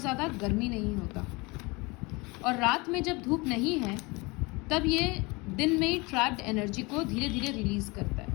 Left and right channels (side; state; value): right; quieter; 25.8 dB